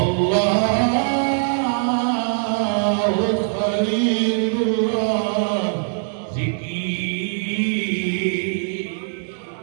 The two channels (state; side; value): silent; left; digital silence